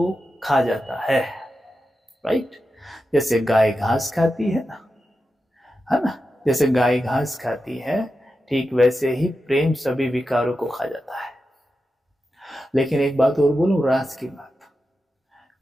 खा जाता है, राइट। जैसे गाय घास खाती है ना, जैसे गाय घास खाती है, ठीक वैसे ही प्रेम सभी विकारों को खा जाता है। लेकिन एक बात और बोलूं, राज की बात,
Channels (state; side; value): normal; both; correlation 0.90